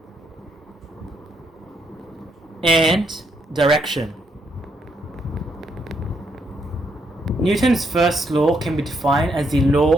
and direction. Newton's first law can be defined as the law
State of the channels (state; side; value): normal; both; correlation 0.76